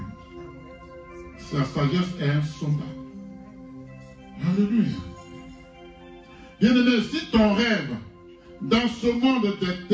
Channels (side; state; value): both; identical; correlation 1.00